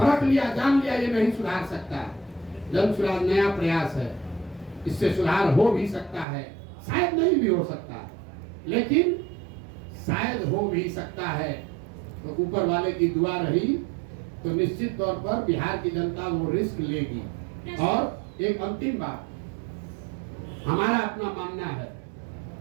लिया, जान लिया, ये नहीं सुधार सकता है। जन सुराज नया प्रयास है, इससे सुधार हो भी सकता है, शायद नहीं भी हो सकता, लेकिन शायद हो भी सकता है। तो ऊपर वाले की दुआ रही तो निश्चित तौर पर बिहार की जनता वो रिस्क लेगी। और एक अंतिम बात, हमारा अपना मानना है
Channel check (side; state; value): left; drops out; at 6.2 s